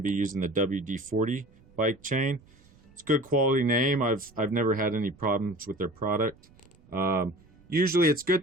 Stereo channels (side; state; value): right; noise; rumble, 28 dB below the sound